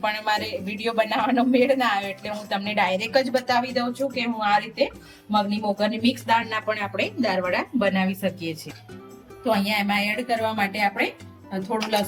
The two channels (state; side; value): identical; both; correlation 1.00